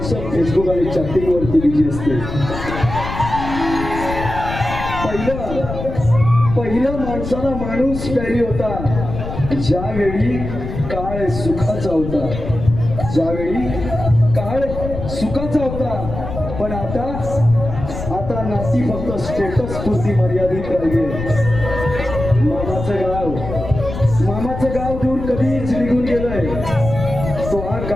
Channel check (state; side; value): noise; left; rumble, 7 dB below the sound